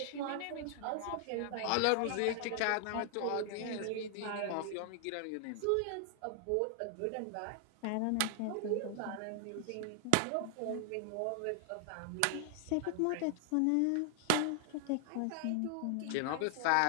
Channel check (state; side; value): different; both; correlation 0.00